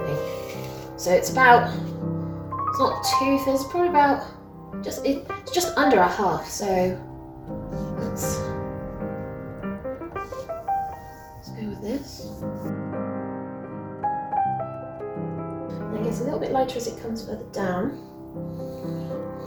think. So it's about, it's not too thin, it's probably about it's just under a half, so let's go with this. And it gets a little bit lighter as it comes further down.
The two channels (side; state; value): both; identical; correlation 1.00